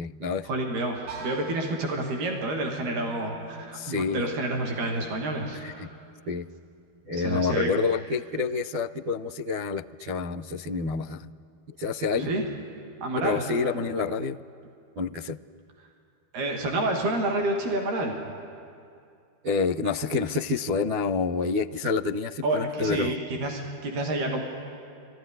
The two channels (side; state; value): left; late; 13 ms